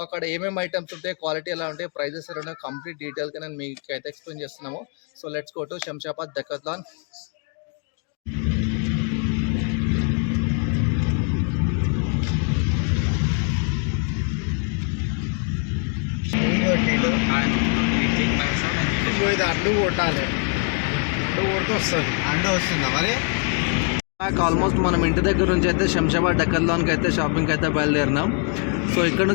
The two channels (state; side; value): quieter; right; 39.9 dB